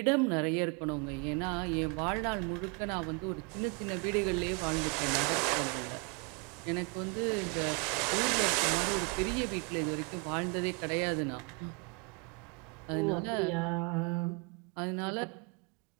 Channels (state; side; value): quieter; left; 31.9 dB